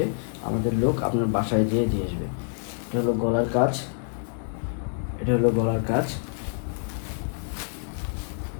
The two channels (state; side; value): silent; right; digital silence